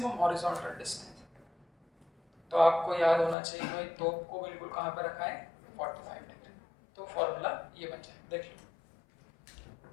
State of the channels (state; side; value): drops out; right; at 3.4 s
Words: horizontal distance, तो आपको याद होना चाहिए भाई तोप को बिल्कुल कहाँ पे रखा है 45 डिग्री। तो फॉर्मूला ये बन जाए, देख लो।